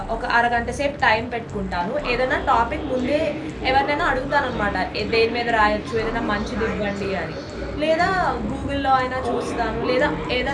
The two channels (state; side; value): identical; both; correlation 1.00